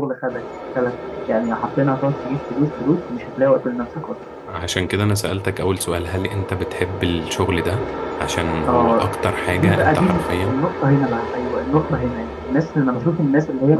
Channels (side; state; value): both; identical; correlation 1.00